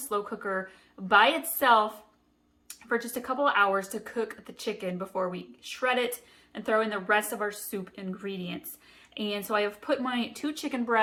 cooker by itself for just a couple of hours to cook the chicken before we shred it and throw in the rest of our soup ingredients. And so I have put my 2 chicken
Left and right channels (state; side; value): identical; both; correlation 1.00